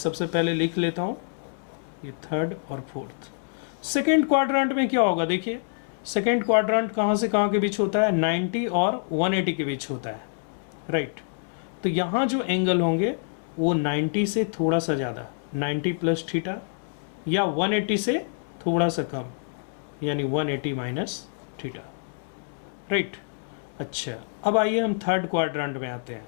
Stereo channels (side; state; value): right; silent; digital silence